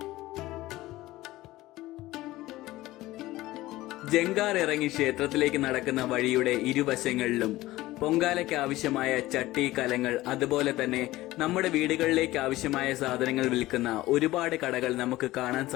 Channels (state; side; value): quieter; right; 17.4 dB